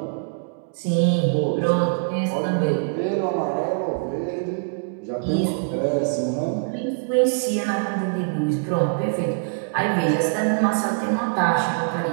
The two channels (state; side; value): silent; left; digital silence